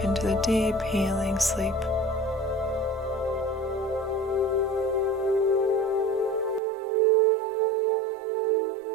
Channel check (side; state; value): left; drops out; at 6.6 s